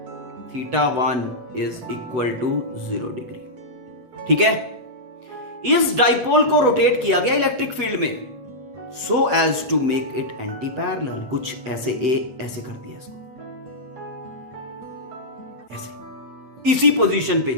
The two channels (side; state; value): left; late; 8.1 ms